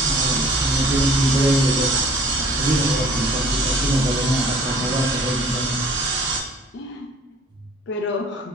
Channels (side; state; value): both; normal; correlation 0.52